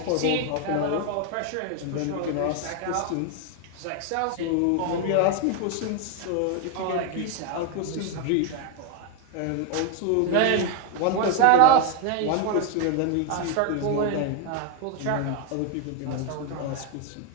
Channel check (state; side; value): different; both; correlation 0.01